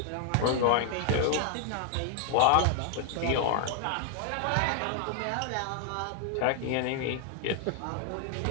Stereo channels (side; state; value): both; different; correlation 0.00